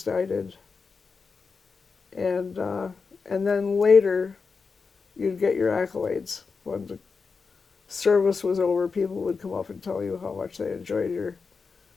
I did. And then later, you'd get your accolades. When the service was over, people would come up and tell you how much they enjoyed your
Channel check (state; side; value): quieter; right; 4.9 dB